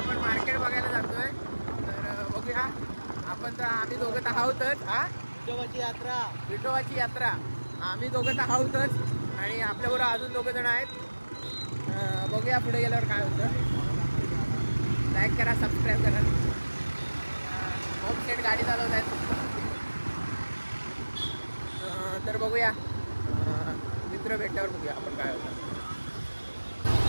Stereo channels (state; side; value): inverted; both; correlation -1.00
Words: मार्केट बघायला जातोय. तर बघूया आपण. तर आम्ही दोघं तर आहोतच. विठोबाची यात्रा आम्ही दोघं तर आहोतच आणि आपल्याबरोबर अजून दोघं जण आहेत. बघूया पुढे गेल्यावर काय होतं. लाईक करा, सबस्क्राईब करा. होम सेट गाडी चालवत आहेत. तर बघूया मित्र भेटल्यावर बघूया आपण काय होतं.